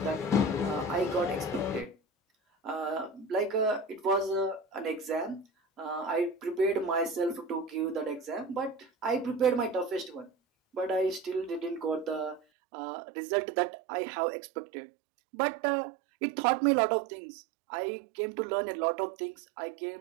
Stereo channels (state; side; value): drops out; left; at 12.4 s